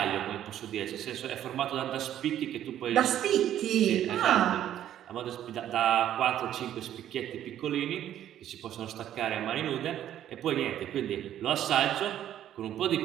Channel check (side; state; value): left; quieter; 11.3 dB